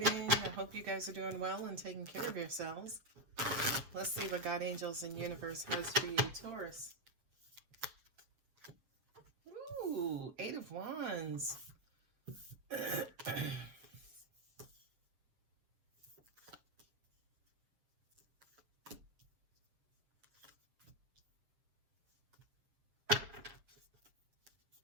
I hope you guys are doing well and taking care of yourselves. Let's see what God, angels, and universe has for you, Taurus. Ooh, 8 of Wands.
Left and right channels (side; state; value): left; late; 7.5 ms